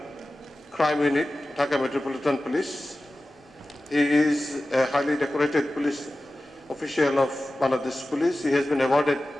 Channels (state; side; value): normal; both; correlation 0.95